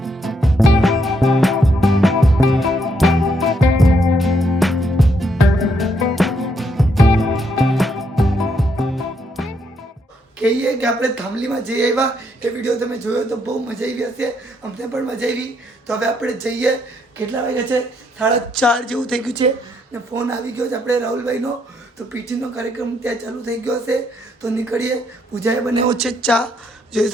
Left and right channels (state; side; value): normal; both; correlation 0.75